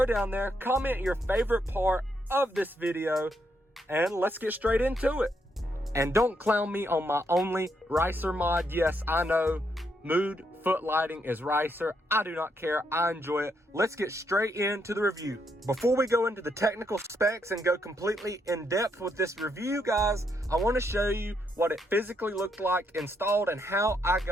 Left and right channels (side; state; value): both; normal; correlation 0.77